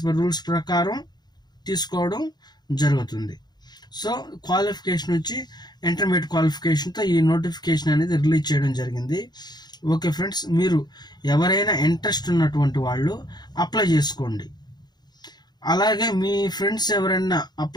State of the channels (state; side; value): late; right; 0.20 ms